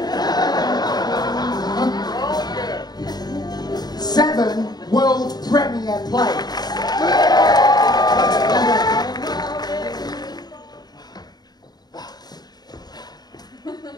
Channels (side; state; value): right; late; 0.20 ms